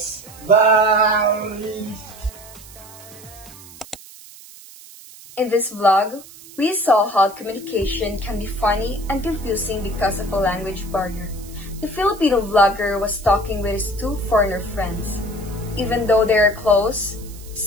Bye! In this vlog, we saw how communication can be funny and confusing because of a language barrier. The Filipino vlogger was talking with his two foreigner friends. Even though they are close,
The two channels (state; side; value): noise; right; hiss, 19 dB below the sound